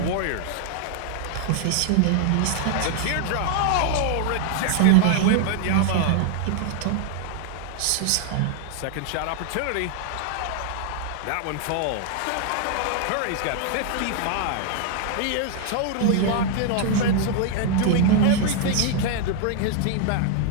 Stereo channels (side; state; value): both; different; correlation 0.00